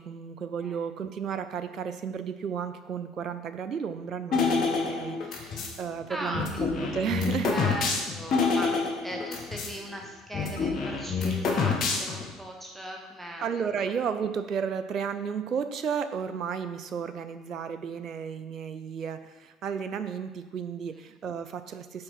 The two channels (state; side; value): normal; both; correlation 0.57